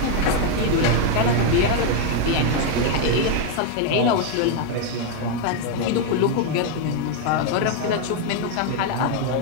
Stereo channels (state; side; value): different; both; correlation 0.01